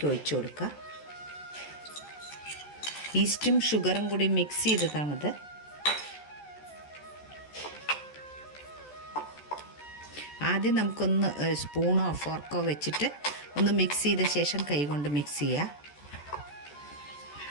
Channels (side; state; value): right; late; 14 ms